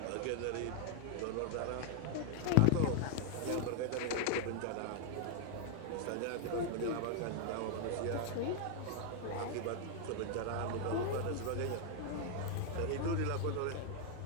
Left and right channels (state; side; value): different; both; correlation 0.00